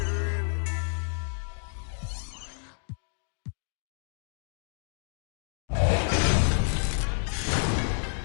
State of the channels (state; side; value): silent; right; digital silence